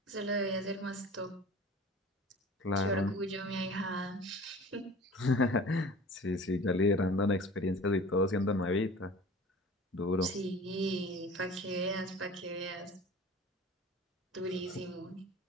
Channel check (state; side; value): normal; both; correlation 0.42